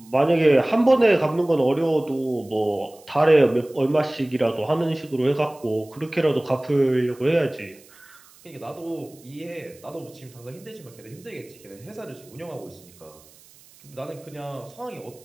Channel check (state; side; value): noise; right; hiss, 25 dB below the sound